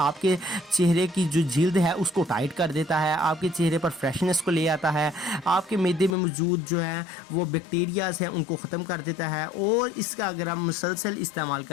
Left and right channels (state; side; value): drops out; right; at 6.2 s